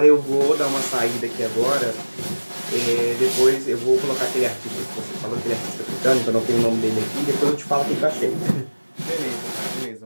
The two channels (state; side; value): inverted; both; correlation -1.00